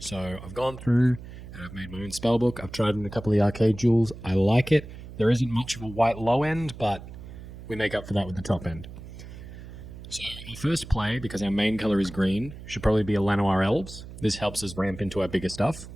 I've gone through and I've made my own spellbook. I've tried in a couple of the arcade jewels. I like it. There isn't much of a white low end, but we make up for that with the top end. So our first play, because our main colour is green, should probably be a Llanowar Elves. This helps us ramp into our bigger stuff.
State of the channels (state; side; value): noise; right; hum, 14 dB below the sound